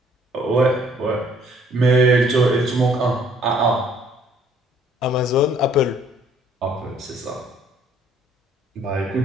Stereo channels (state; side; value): normal; both; correlation 0.61